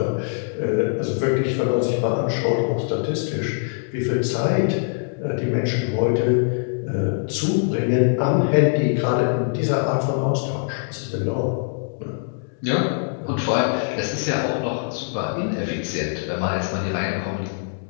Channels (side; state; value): right; silent; digital silence